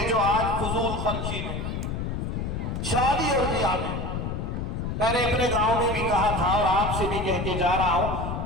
جو آج فضول خرچی میں، شادی اور بیاہ میں نے اپنے گاؤں میں بھی کہا تھا اور آپ سے بھی کہہ کے جا رہا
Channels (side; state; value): left; noise; rumble, 3 dB below the sound